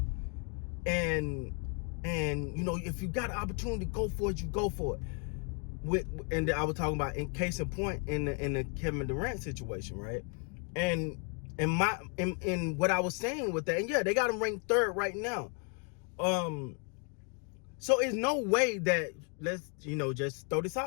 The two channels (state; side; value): quieter; right; 38.4 dB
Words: and if you got an opportunity to go for it, you go for it. And I was talking about, in case in point, in the Kevin Durant situation, right? And in what I was saying with that, and yeah, they got them ranked 3rd right now. So it's no way that, let's just throw this